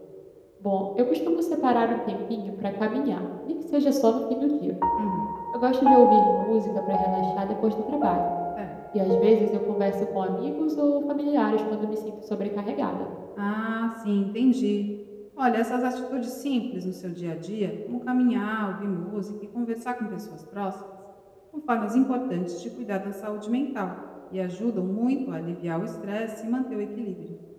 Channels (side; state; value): both; identical; correlation 1.00